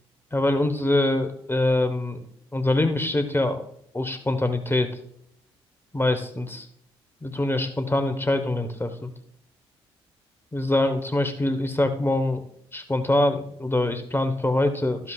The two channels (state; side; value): normal; both; correlation 0.85